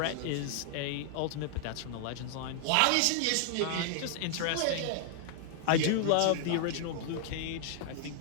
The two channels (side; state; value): both; different; correlation 0.00